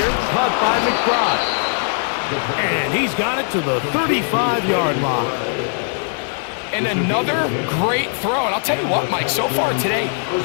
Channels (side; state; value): right; silent; 56 dB below the other